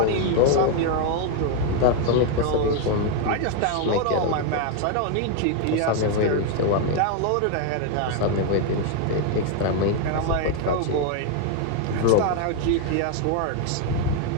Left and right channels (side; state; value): both; different; correlation 0.01